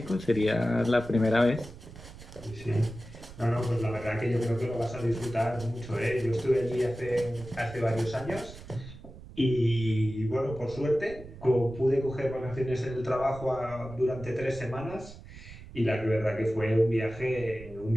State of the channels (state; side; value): noise; right; rumble, 16 dB below the sound